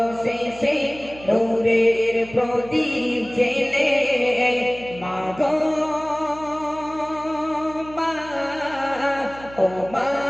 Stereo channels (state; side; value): noise; right; hum, 18 dB below the sound